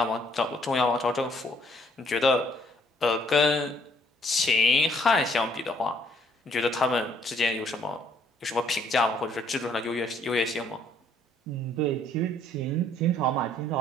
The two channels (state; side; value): normal; both; correlation 0.64